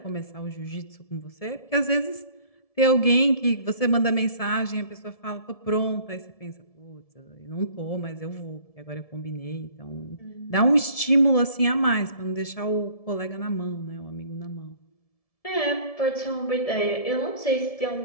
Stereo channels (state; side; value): late; right; 1.7 ms